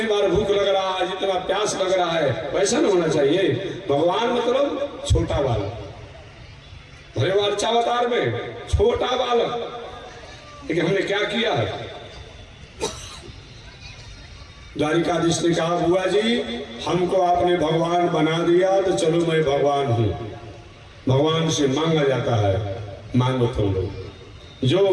बार भूख लग रहा है, जितना प्यास लग रहा है, वैसा नहीं होना चाहिए। भगवान मतलब छोटा बालक, भले वो अच्छा अवतार में छोटा बालक, लेकिन हमने क्या किया है? द्वारिकाधीश ने कहा, बुआ जी हमको आपने भगवान बना दिया तो चलो मैं भगवान हूं। भगवान से मांगा जाता है, मांगो तुम लोग, जो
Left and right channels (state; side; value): identical; both; correlation 1.00